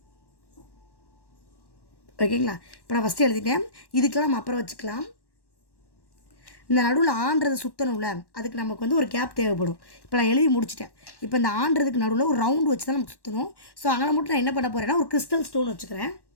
ஓகேங்களா? இப்போ நான் ஃபஸ்ட்டு எழுதிட்டேன். இதுக்கெல்லாம் நம்ம அப்புறம் வச்சுக்கலாம். இந்த நடுவில் ஆன்றதை சுற்றணும்ல, அதுக்கு நமக்கு வந்து ஒரு கேப் தேவைப்படும். இப்போ நான் எழுதி முடிச்சிட்டேன். இப்போ இந்த ஆன்றதுக்கு நடுவில் ஒரு ரவுண்டு வச்சு தான் நமக்கு சுற்றணும். ஸோ அங்கே மட்டும் நான் என்ன பண்ண போகிறேன்னா ஒரு கிறிஸ்டல் ஸ்டோன் வச்சுக்கிறேன்.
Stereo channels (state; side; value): late; right; 1.1 ms